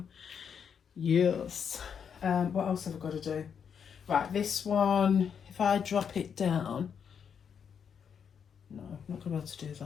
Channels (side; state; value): right; quieter; 7.3 dB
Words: Yes. What else have I got to do? Right, this one, if I drop it down, no, I'm not going to be able to do